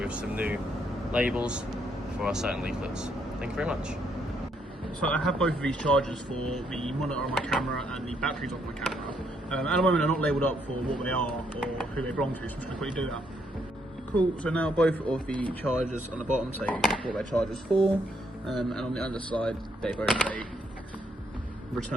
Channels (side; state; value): both; normal; correlation 0.73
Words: some new labels for our certain leaflets. Thank you very much. So I have both of these chargers for the monitor on my camera and the batteries on my camera. At the moment they're not labelled up for what they are or who they belong to, so I'm just going to quickly do that. Cool, so now both of the chargers on the bottom say what their charger's for, and on the underside they both say